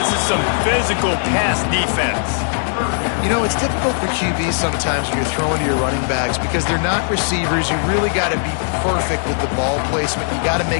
is some physical pass defense. You know, it's difficult for QBs sometimes when you're throwing to your running backs because they're not receivers. You really got to be perfect with the ball placement. You got to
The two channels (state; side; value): silent; right; digital silence